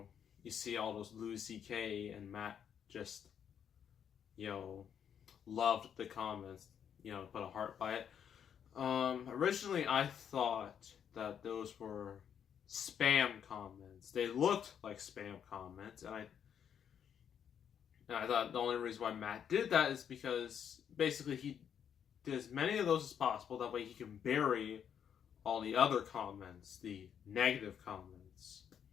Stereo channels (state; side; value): quieter; right; 8.4 dB